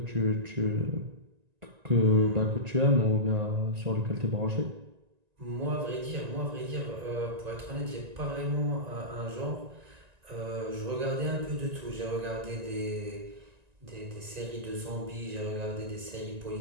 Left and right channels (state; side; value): late; left; 1.9 ms